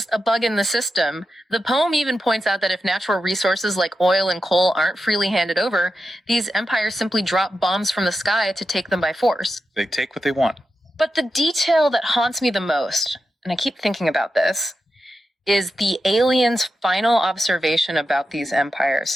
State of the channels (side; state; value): both; normal; correlation 0.89